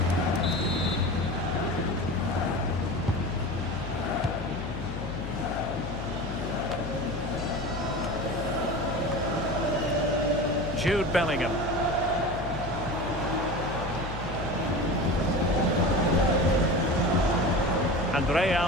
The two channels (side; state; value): left; noise; hum, 9 dB below the sound